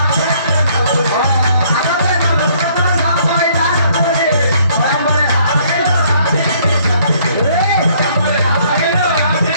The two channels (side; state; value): both; inverted; correlation -0.63